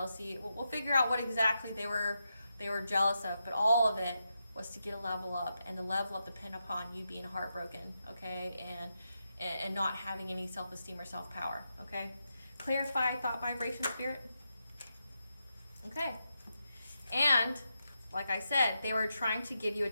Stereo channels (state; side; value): inverted; both; correlation -0.86